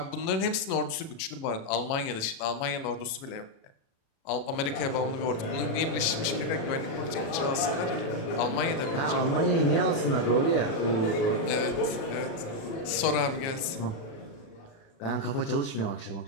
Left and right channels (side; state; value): right; late; 37 ms